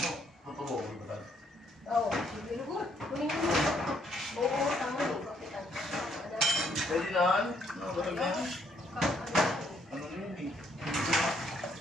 Totoo, ulit ba? Oo, sige lugur. Kunin ko mo. Oo, tama yung kapitan. Pwede na, ano? Ano ba ito? Ano yun eh?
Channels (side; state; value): both; normal; correlation 0.70